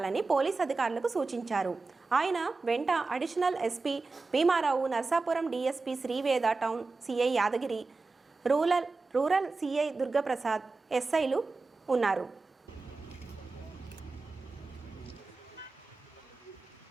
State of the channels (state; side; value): quieter; left; 3.8 dB